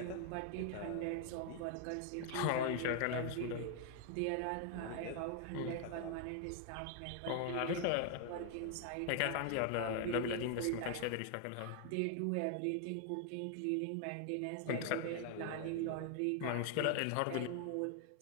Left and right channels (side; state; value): both; different; correlation 0.00